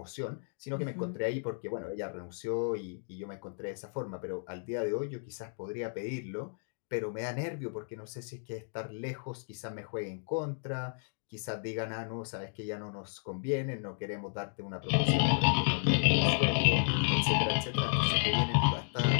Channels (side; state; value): right; silent; digital silence